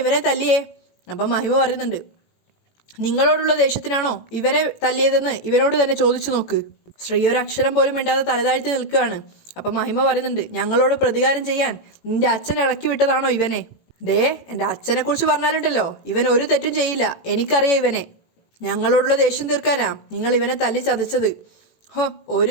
ഇവനെ തല്ലിയേ? അപ്പം മഹിമ പറയുന്നുണ്ട്, നിങ്ങളോടുള്ള ദേഷ്യത്തിനാണോ ഇവനെ തല്ലിയതെന്ന് ഇവനോട് തന്നെ ചോദിച്ചു നോക്ക്. ശ്രീ ഒരു അക്ഷരം പോലും മിണ്ടാതെ തലതാഴ്ത്തി നിൽക്കുകയാണ്. അപ്പം മഹിമ പറയുന്നുണ്ട്, ഞങ്ങളോട് പ്രതികാരം ചെയ്യാൻ നിന്റെ അച്ഛൻ ഇളക്കി വിട്ടതാണോ ഇവനെ? ദേ, എൻ്റെ അച്ഛനെ കുറിച്ച് പറഞ്ഞാലുണ്ടല്ലോ, ഇവൻ ഒരു തെറ്റും ചെയ്യില്ല, എനിക്കറിയാം ഇവനെ. ഞങ്ങളോടുള്ള ദേഷ്യം തീർക്കാനാ നിങ്ങൾ ഇവനെ തല്ലി ചതച്ചത്. ഹോ, ഒരു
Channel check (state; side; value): late; right; 18 ms